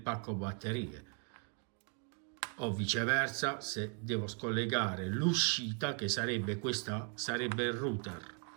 batterie, o viceversa. Se devo scollegare l'uscita, che sarebbe questa, sarebbe il router,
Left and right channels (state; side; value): quieter; left; 37.7 dB